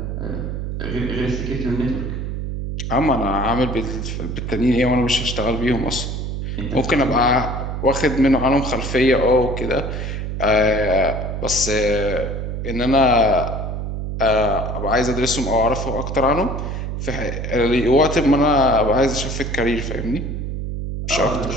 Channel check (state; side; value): noise; right; hum, 4 dB below the sound